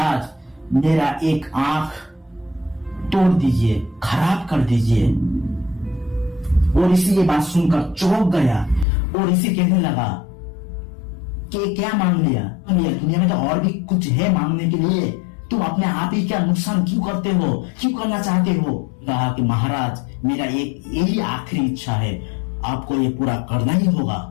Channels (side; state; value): right; drops out; at 8.8 s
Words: मेरा एक आंख तोड़ दीजिए, खराब कर दीजिए। वो ऋषि ये बात सुनकर चौंक गया। वो ऋषि कहने लगा कि क्या मांग लिया, दुनिया में तो और भी कुछ है मांगने के लिए, तुम अपने आप ही क्या नुकसान क्यों करते हो, क्यों करना चाहते हो। कहा कि महाराज मेरा एक यही आखिरी इच्छा है, आपको ये पूरा करना ही होगा।